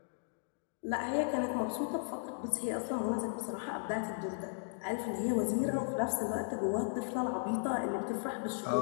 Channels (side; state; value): right; silent; digital silence